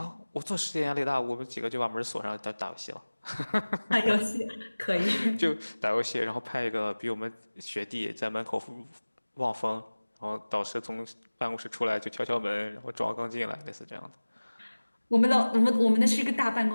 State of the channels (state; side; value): inverted; both; correlation -1.00